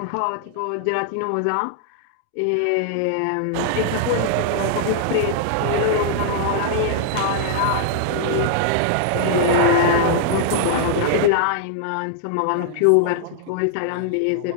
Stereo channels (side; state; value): both; different; correlation -0.01